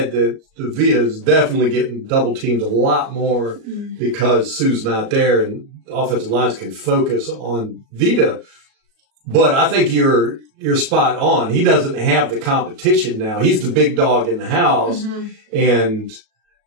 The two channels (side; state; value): left; late; 37 ms